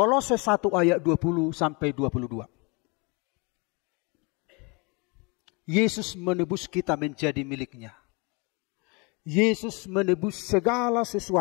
1 ayat 20 sampai 22. Yesus menebus kita menjadi miliknya. Yesus menebus segala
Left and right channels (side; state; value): right; quieter; 29.9 dB